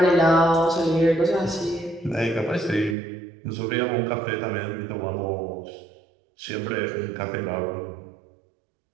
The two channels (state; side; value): drops out; left; at 3.0 s